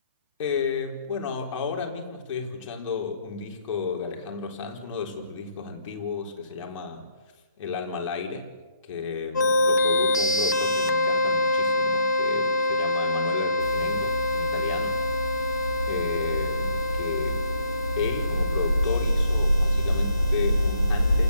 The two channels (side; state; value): both; inverted; correlation -0.67